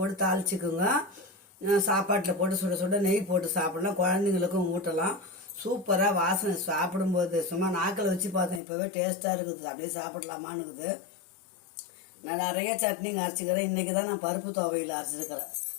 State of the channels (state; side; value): drops out; right; at 8.6 s